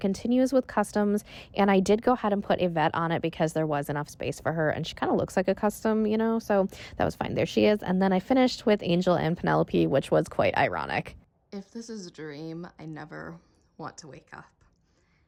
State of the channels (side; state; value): both; identical; correlation 1.00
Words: with customs, and I did go ahead and put a vet on it because there was enough space for her, and she kind of looks like a custom, you know, so that was fine. There she is. And then I finished with Angel and Penelope, which was quite ironic. If this is a dream, I never want to wake up.